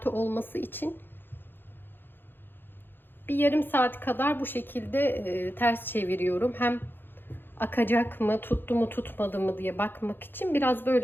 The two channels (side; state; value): right; late; 0.099 ms